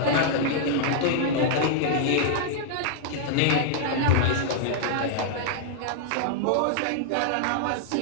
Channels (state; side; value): different; both; correlation 0.00